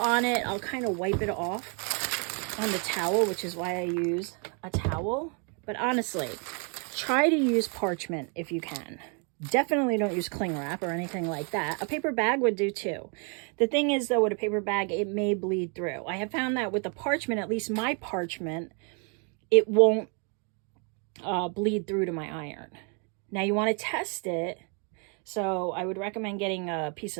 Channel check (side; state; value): left; quieter; 37.5 dB